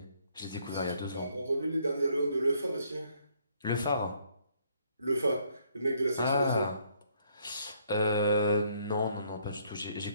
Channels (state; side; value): inverted; both; correlation -0.68